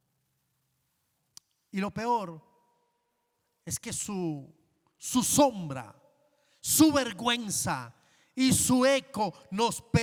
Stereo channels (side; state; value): both; identical; correlation 1.00